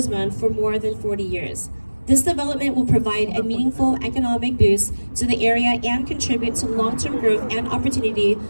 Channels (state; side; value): inverted; both; correlation -1.00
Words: for more than 40 years. This development will provide a meaningful economic boost to the area and contribute to long-term growth and opportunity